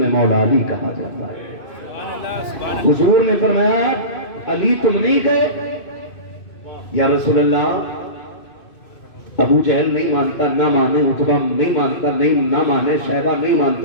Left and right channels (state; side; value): late; right; 2.6 ms